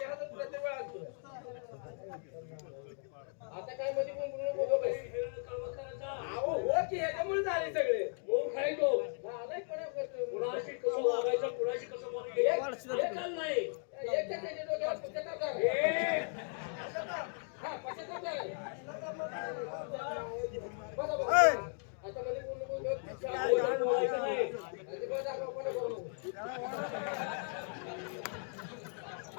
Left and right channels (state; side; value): silent; right; 53 dB below the other